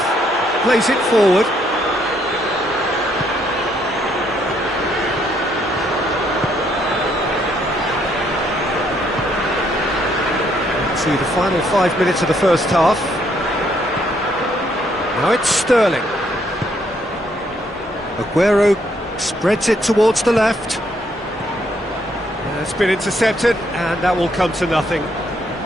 plays it forward. To the final 5 minutes of the first half. Now it's Sterling. Aguero spreads it towards the left. It's been intercepted, and that will come to nothing.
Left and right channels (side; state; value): both; normal; correlation 0.71